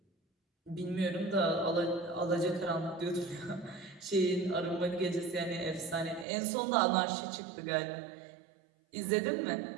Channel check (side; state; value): left; drops out; at 6.2 s